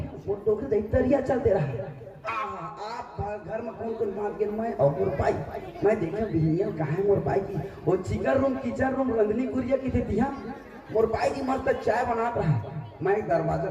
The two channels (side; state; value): both; identical; correlation 1.00